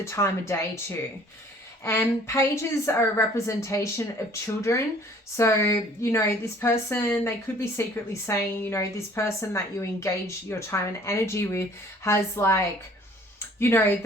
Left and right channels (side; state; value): both; normal; correlation 0.54